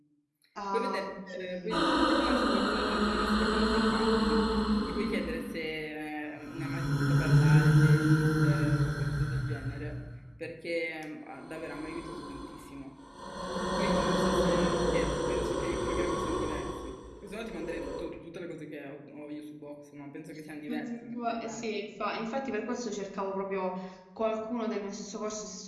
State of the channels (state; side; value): identical; both; correlation 1.00